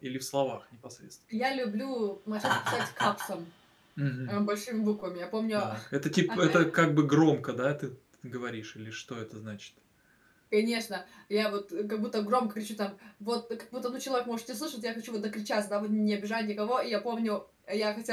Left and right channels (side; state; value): both; identical; correlation 1.00